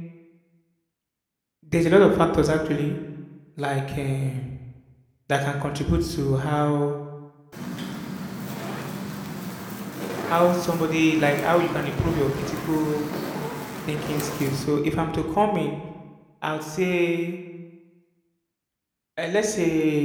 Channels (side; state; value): both; identical; correlation 1.00